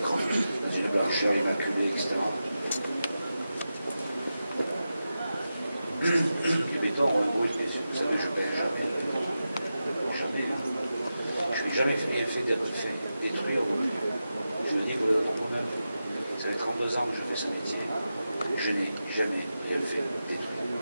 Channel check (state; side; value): inverted; both; correlation -0.91